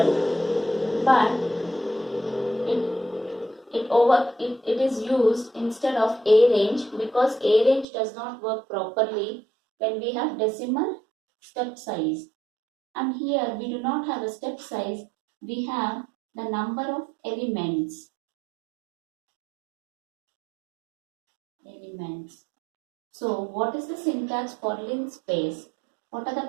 but it is used instead of arange, because arange does not work properly when we have decimal step size. And here we do not have a step size, we have the number of elements. So what is the syntax for linspace? What are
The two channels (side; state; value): left; drops out; at 7.9 s